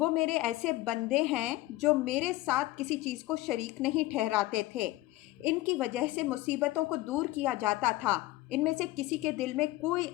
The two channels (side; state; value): right; quieter; 17.9 dB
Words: میرے ایسے بندے ہیں جو میرے ساتھ کسی چیز کو شریک نہیں ٹھہراتے تھے، ان کی وجہ سے مصیبتوں کو دور کیا جاتا تھا۔ ان میں سے کسی کے دل میں کوئی